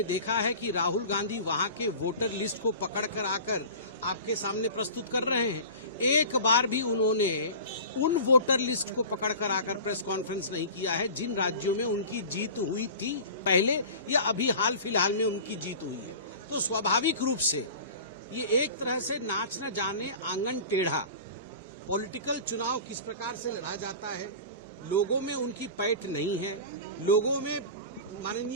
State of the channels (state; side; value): inverted; both; correlation -0.36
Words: देखा है कि राहुल गांधी वहां के वोटर लिस्ट को पकड़कर आकर आपके सामने प्रस्तुत कर रहे हैं? एक बार भी उन्होंने उन वोटर लिस्ट को पकड़कर आकर प्रेस कॉन्फ्रेंस नहीं किया है जिन राज्यों में उनकी जीत हुई थी पहले या अभी हाल फिलहाल में उनकी जीत हुई है। तो स्वाभाविक रूप से ये एक तरह से नाच न जाने आंगन टेढ़ा पॉलिटिकल चुनाव किस प्रकार से लड़ा जाता है, लोगों में उनकी पैठ नहीं है, लोगों में